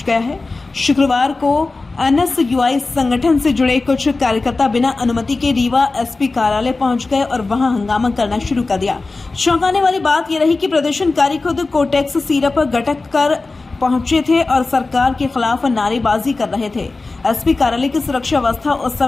गया है। शुक्रवार को एनएसयूआई संगठन से जुड़े कुछ कार्यकर्ता बिना अनुमति के रीवा एसपी कार्यालय पहुंच गए और वहां हंगामा करना शुरू कर दिया। चौंकाने वाली बात यह रही कि प्रदर्शनकारी खुद कोटेक्स सिरप गटक कर पहुंचे थे और सरकार के खिलाफ नारेबाजी कर रहे थे। एसपी कार्यालय की सुरक्षा व्यवस्था उस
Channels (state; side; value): quieter; right; 3.6 dB